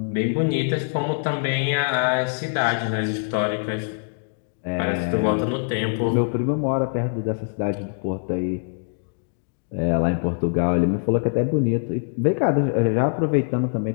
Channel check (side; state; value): right; silent; digital silence